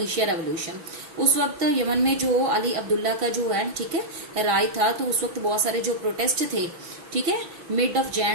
रेवोल्यूशन। उस वक्त यमन में जो अली अब्दुल्ला का जो है, ठीक है, राय था, तो उस वक्त बहुत सारे जो प्रोटेस्ट थे, ठीक है, मिड ऑफ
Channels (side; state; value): left; late; 6.0 ms